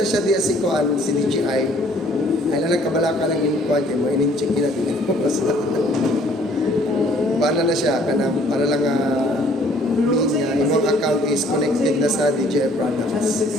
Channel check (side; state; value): both; normal; correlation 0.59